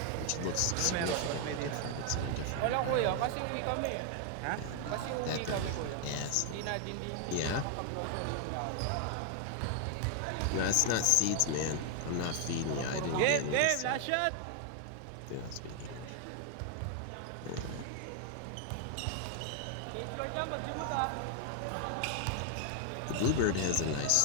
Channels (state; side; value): different; both; correlation 0.00